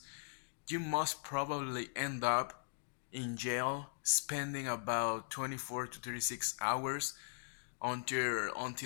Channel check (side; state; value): right; silent; digital silence